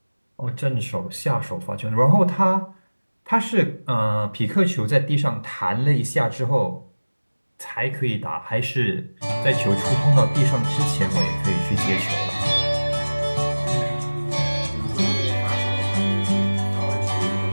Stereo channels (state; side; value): inverted; both; correlation -1.00